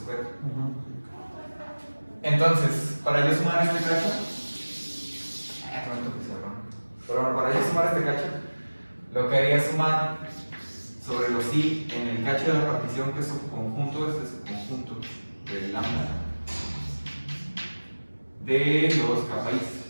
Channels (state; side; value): inverted; both; correlation -1.00